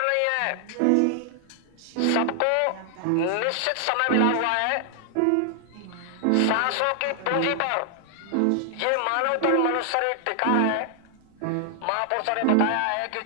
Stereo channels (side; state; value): both; different; correlation 0.00